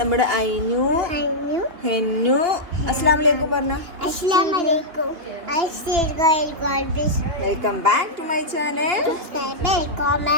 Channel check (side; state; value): left; late; 2.8 ms